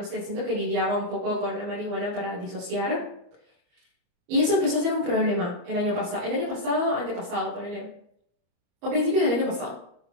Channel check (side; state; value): left; late; 34 ms